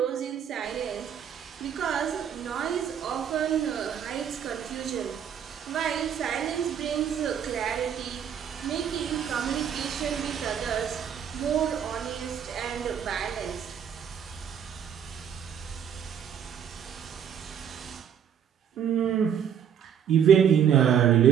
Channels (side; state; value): left; quieter; 8.6 dB